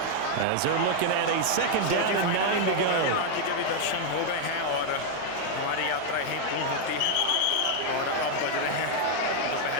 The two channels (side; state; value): both; different; correlation 0.00